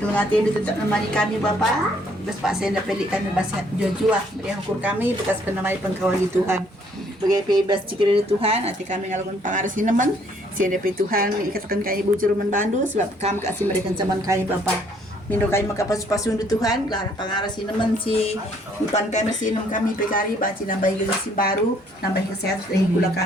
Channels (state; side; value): normal; both; correlation 0.64